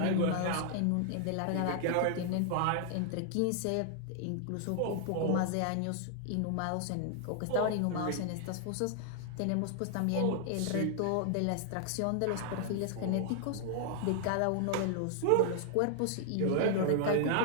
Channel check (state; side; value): different; both; correlation 0.00